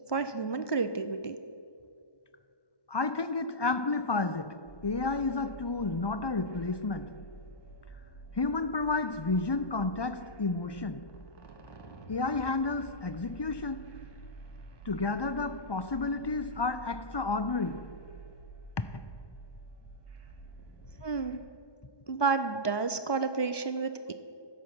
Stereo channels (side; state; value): right; late; 1.2 ms